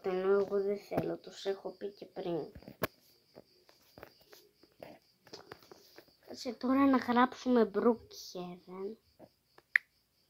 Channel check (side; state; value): both; identical; correlation 1.00